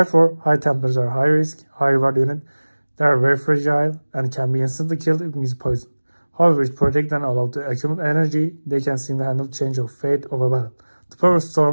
High Templars are high risk, high reward unit. They are very fragile and can be instantly killed if used poison. However, if protect and allowed to accumulate energy, they can single-handle change of fate of a battle. The Power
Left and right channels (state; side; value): inverted; both; correlation -1.00